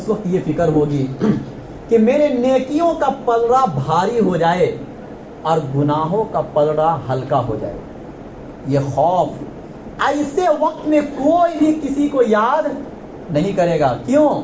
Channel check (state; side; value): identical; both; correlation 1.00